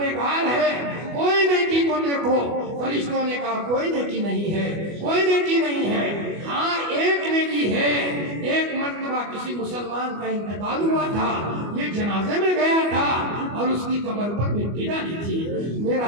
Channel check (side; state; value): left; late; 25 ms